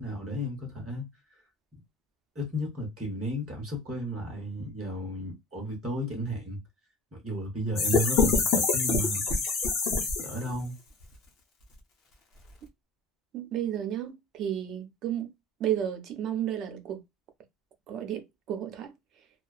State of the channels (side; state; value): both; normal; correlation 0.40